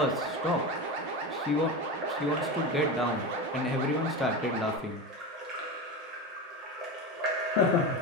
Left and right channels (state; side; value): normal; both; correlation 0.22